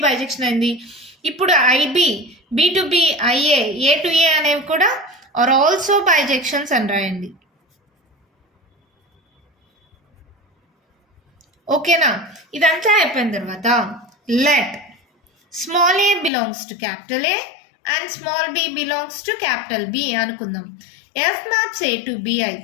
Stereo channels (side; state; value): right; drops out; at 16.3 s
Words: బైజెక్షన్ అయింది. ఇప్పుడు IB B to B IA A to A అనేవి కూడా ఆర్ ఆల్సో బైజెక్షన్స్ అని రాయండి. ఓకేనా? ఇదంతా అయిపోయిన తర్వాత let small A belongs to capital A and small B belongs to capital B అనుకుందాం. F maps A to B